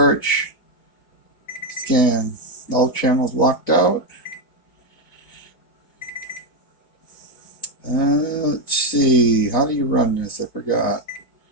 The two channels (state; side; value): late; right; 4.1 ms